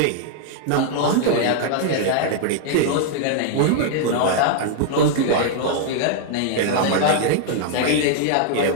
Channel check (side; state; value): both; different; correlation 0.00